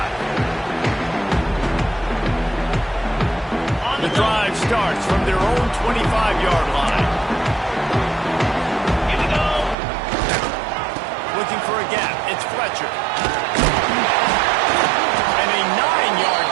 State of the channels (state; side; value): drops out; left; at 9.8 s